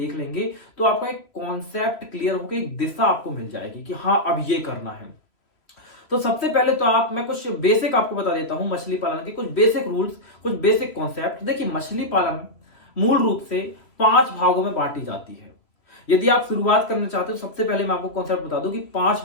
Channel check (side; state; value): right; late; 3.0 ms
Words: लेंगे तो आपका एक कॉन्सेप्ट क्लियर होकर एक दिशा आपको मिल जाएगी कि हाँ, अब ये करना है। तो सबसे पहले तो मैं कुछ बेसिक आपको बता देता हूं मछली पालन के, कुछ बेसिक रूल्स, कुछ बेसिक कॉन्सेप्ट। देखिए, मछली पालन मूल रूप से 5 भागों में बांटी जाती है। यदि आप शुरुआत करना चाहते हो, सबसे पहले मैं आपको कॉन्सेप्ट बता दूं कि 5